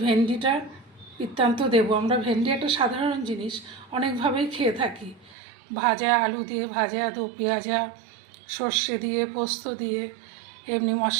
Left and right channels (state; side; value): drops out; left; at 5.4 s